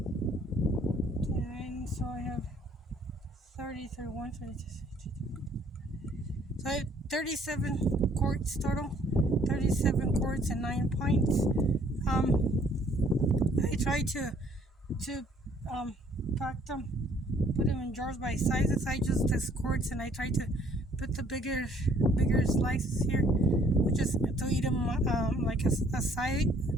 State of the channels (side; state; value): both; normal; correlation 0.61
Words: 10. So I have 30, 31, 32. So I have 37 quarts total. 37 quarts and 9 pints. I try to pack them, put them in jars by sizes. I just this quarts, and I try to put the bigger slices here, just to eat them like a side